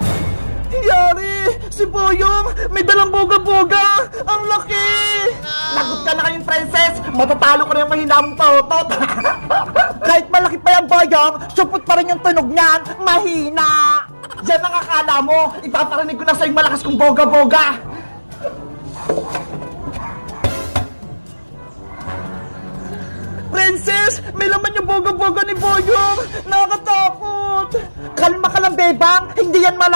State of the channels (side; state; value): both; inverted; correlation -1.00